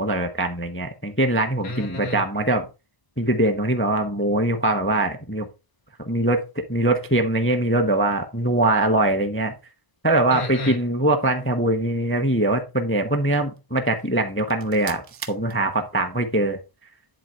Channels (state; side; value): late; right; 1.0 ms